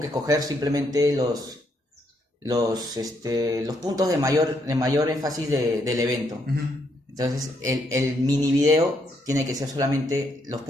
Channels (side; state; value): both; normal; correlation 0.75